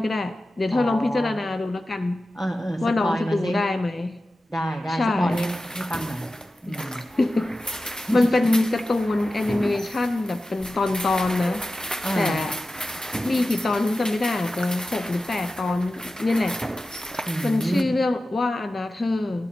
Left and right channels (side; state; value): both; normal; correlation 0.94